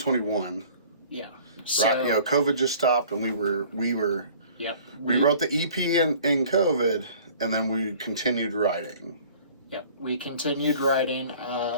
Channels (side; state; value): both; inverted; correlation -0.50